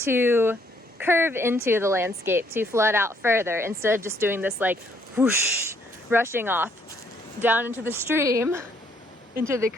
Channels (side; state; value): both; normal; correlation 0.68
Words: curve into the landscape, to flood out further, instead of just doing this like whoosh, rushing off down into the stream, into the